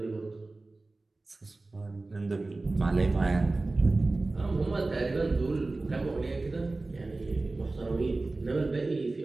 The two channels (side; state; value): left; quieter; 3.3 dB